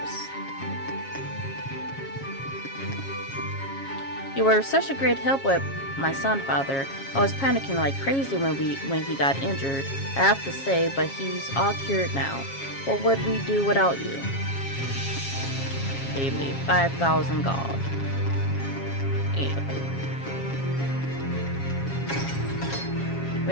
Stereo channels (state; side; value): late; right; 7.3 ms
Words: You were such a great help with my son, Father. I was panicking like crazy when he got injured, I have to say, but he's all cured now. What would we do without you? Pay me 5,000 gold. Anyway.